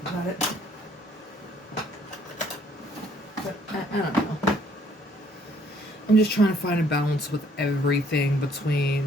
about it. But I don't know. I'm just trying to find a balance with everything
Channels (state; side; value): normal; both; correlation 0.62